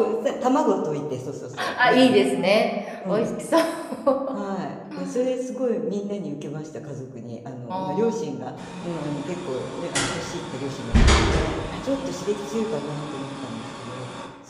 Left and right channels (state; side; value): identical; both; correlation 1.00